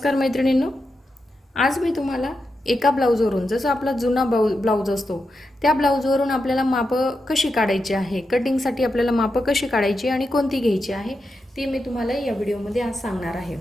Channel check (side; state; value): both; normal; correlation 0.87